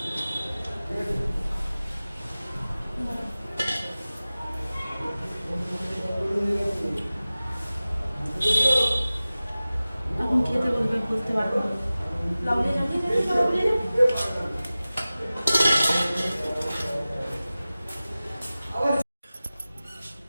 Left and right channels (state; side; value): inverted; both; correlation -0.97